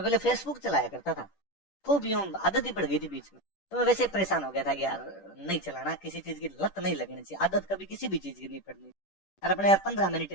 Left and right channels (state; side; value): late; right; 10 ms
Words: पहले फेसबुक चलाया करता था, खूब यूं आदत ही पड़ गई थी बीच में, तो मैं वैसे परेशान हो गया था कि यार नहीं चलाना, किसी चीज की लत नहीं लगनी चाहिए, आदत कभी किसी भी चीज की नहीं पड़नी। और अपने यार 15 मिनट